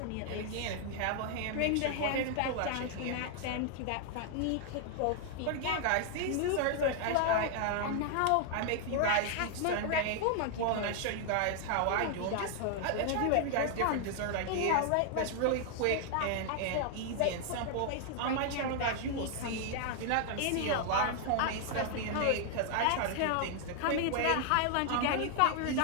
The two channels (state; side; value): different; both; correlation 0.00